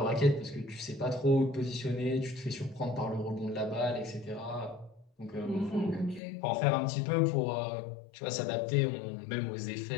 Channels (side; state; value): right; drops out; at 6.2 s